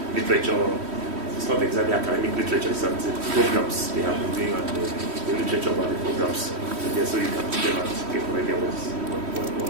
literature, it's not exactly academic literature, it's the programs they have been doing and the literature about the programs there, so you can see them and get an idea what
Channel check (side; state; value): left; late; 3.1 ms